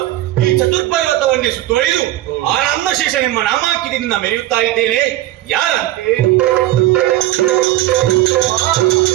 ಈ ಚತುರ್ಪರ್ವತವನ್ನೇ ಸುತ್ತುವರಿದು ಆನಂದ ಶೇಷ ನಿಮ್ಮ ನಾಮಾಂಕಿತದಿಂದ ಮೆರೆಯುತ್ತಾ ಇದ್ದೇನೆ. ಯಾರಂತೆ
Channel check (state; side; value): quieter; left; 15.1 dB